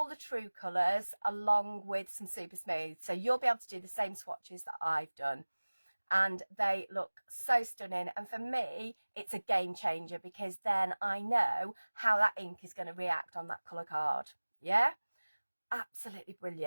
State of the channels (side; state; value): both; inverted; correlation -1.00